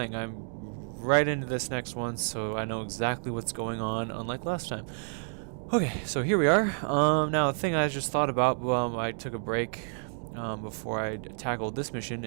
I'm right into this next one, so I know exactly what's going on, unlike last time. Okay, so here we are. Now the thing I just thought about, I took a break before I tackled this mission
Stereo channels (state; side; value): silent; left; 58 dB below the other